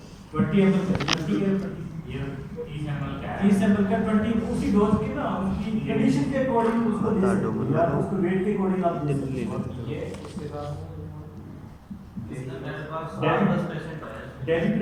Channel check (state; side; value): identical; both; correlation 1.00